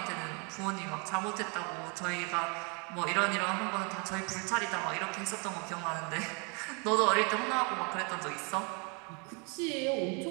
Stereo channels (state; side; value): quieter; left; 33.7 dB